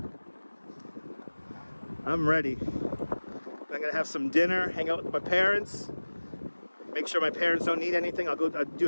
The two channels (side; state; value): both; inverted; correlation -1.00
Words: I'm ready. I'm gonna have some dinner, hang out with my parents, make sure my parents don't need anything. I'll do